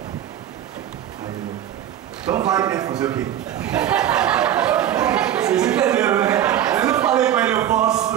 Aí ele: então vai, né? Fazer o quê? Vocês entenderam, né? Eu não falei para ele: eu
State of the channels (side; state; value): left; quieter; 11.1 dB